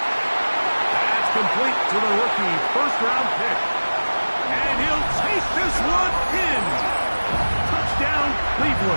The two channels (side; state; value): both; inverted; correlation -1.00